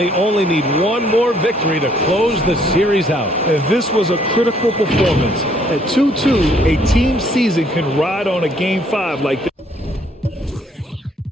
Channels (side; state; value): both; normal; correlation 0.65